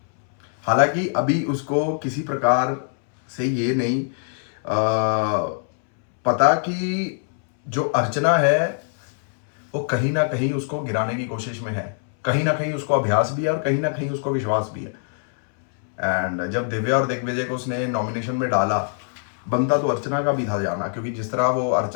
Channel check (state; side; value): silent; right; 63 dB below the other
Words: हालांकि अभी उसको किसी प्रकार से ये नहीं पता कि जो अर्चना है वो कहीं ना कहीं उसको गिराने की कोशिश में है, कहीं ना कहीं उसको अभ्यास भी है और कहीं ना कहीं उसको विश्वास भी है। एंड जब दिव्या और दिग्विजय को उसने नॉमिनेशन में डाला, बनता तो अर्चना का भी था जाना, क्योंकि जिस तरह वो